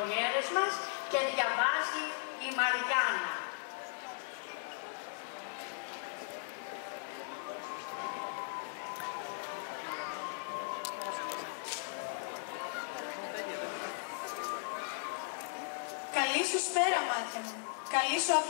μας και διαβάζει η Μαριάννα. Καλή σου σπέρα, μάτια μου. Καλή σου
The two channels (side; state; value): right; silent; digital silence